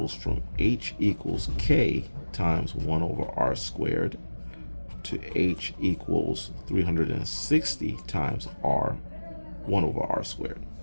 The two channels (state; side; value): inverted; both; correlation -1.00